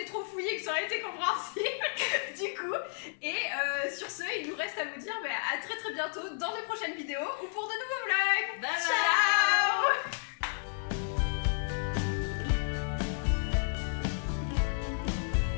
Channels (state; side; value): silent; right; 56 dB below the other